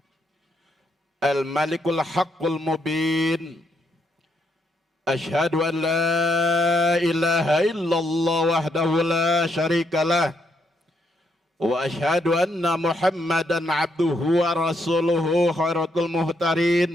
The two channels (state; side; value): normal; both; correlation 0.76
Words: Al-malikul haqqul mubin. Asyhadu an la ilaha illallah wahdahu la syarikalah wa asyhadu anna Muhammadan abduhu wa rasuluhu khairatul